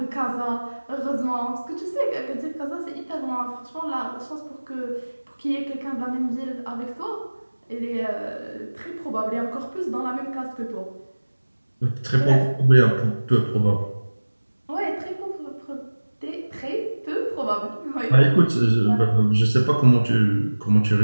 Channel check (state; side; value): inverted; both; correlation -1.00